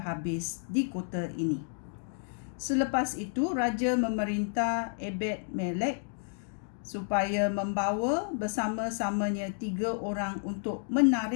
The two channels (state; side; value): silent; right; digital silence